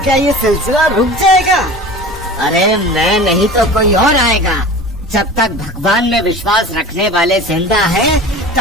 क्या ये सिलसिला रुक जाएगा? अरे मैं नहीं तो कोई और आएगा। जब तक भगवान में विश्वास रखने वाले जिंदा है,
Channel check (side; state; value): both; normal; correlation 0.37